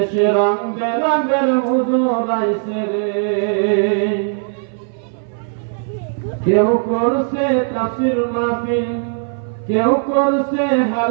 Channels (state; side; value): silent; left; 62 dB below the other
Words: রং বেরঙের হুজুর আইছে রে। কেউ করছে তাফসীর মাহফিল, কেউ করছে